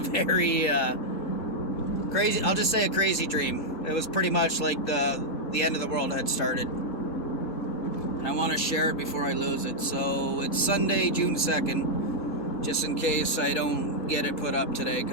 very crazy, I'll just say a crazy dream. It was pretty much like the end of the world had started. And I want to share it before I lose it. So it's Sunday, June 2nd, just in case I don't get it put up today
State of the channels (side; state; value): both; normal; correlation -0.03